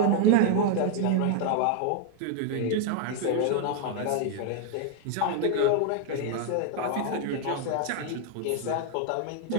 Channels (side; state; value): both; different; correlation 0.00